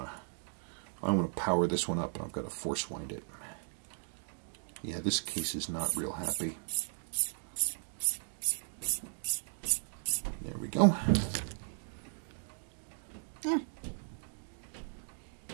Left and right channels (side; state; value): left; silent; 54 dB below the other